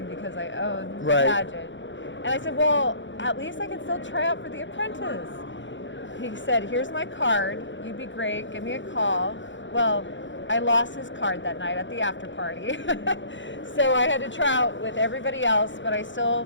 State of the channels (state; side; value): late; right; 0.54 ms